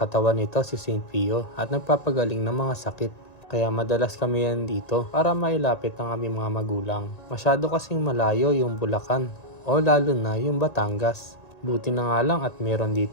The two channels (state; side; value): late; right; 1.9 ms